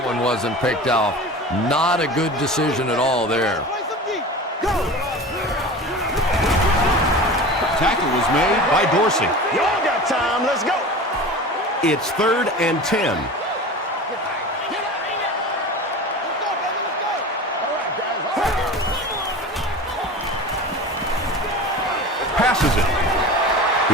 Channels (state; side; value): normal; both; correlation 0.34